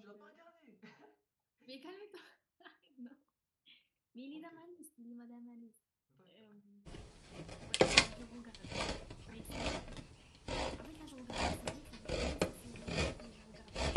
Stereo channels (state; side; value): identical; both; correlation 1.00